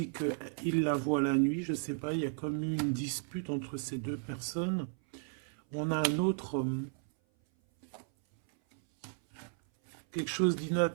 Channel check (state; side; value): silent; left; 55 dB below the other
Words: qu'il la voit la nuit. Je sais pas, il y a comme une dispute entre ces deux personnes. On a un autre, quelque chose